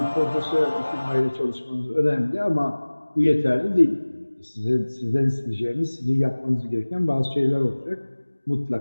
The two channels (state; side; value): inverted; both; correlation -1.00